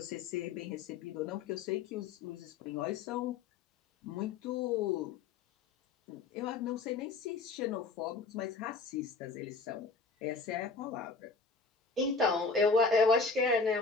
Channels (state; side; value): quieter; right; 4.4 dB